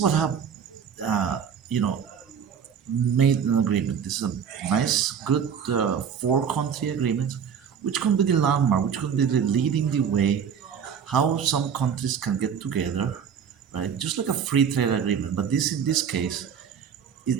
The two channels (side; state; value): left; quieter; 7.5 dB